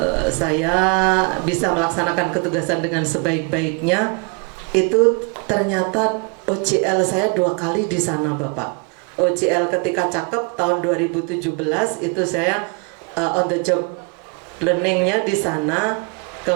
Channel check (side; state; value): left; quieter; 34.8 dB